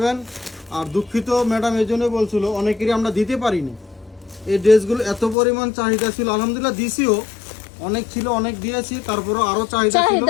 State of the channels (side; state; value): right; drops out; at 5.4 s